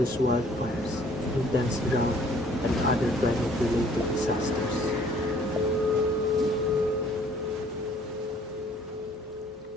wildfires, intense drought, and other climate-related disasters.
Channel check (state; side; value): normal; both; correlation 0.57